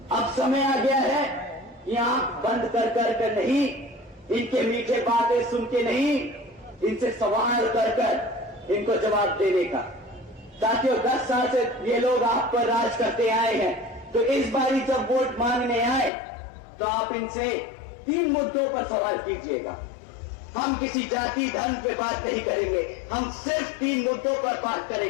अब समय आ गया है कि आंख बंद कर नहीं, इनके मीठे बातें सुन के नहीं, इनसे सवाल कर इनको जवाब देने का। साथियों, 10 साल से ये लोग आप पर राज करते आए हैं, तो इस बारी जब वोट मांगने आए तो आप इनसे 3 मुद्दों पर सवाल कीजिएगा। हम किसी जाति धर्म पे बात नहीं करेंगे, हम सिर्फ 3 मुद्दों पर बात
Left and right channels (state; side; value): drops out; right; at 16.1 s